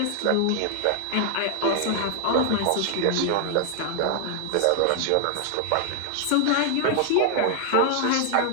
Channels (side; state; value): both; different; correlation 0.00